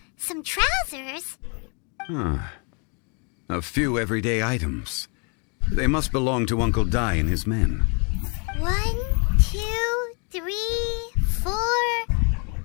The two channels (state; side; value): quieter; right; 36.3 dB